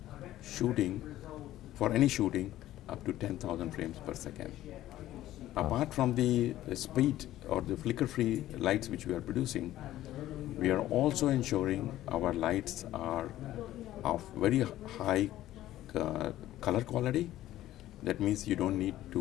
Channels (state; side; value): quieter; right; 14.2 dB